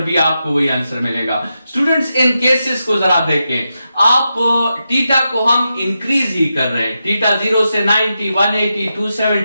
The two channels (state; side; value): inverted; both; correlation -0.88